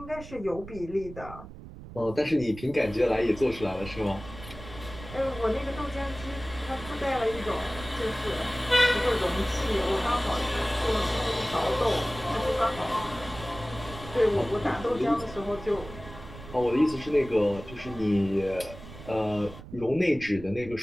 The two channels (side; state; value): right; noise; rumble, 14 dB below the sound